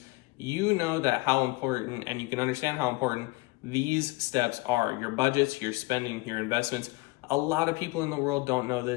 you know that how important, and you can understand how important these steps are. Your budgets, your spending, your investments. A lot of people in the world don't know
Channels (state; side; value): quieter; right; 23.4 dB